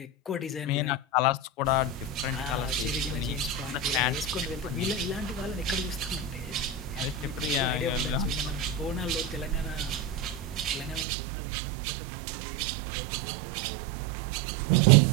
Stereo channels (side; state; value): left; drops out; at 11.1 s